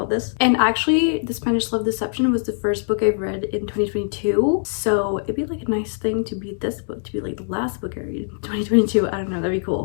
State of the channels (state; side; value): silent; right; digital silence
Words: this. And actually, The Spanish Love Deception was the first book I've read in 2022, so it'd be like a nice thing to be this book, to be like the last book I read in 2022. I don't know, that'd be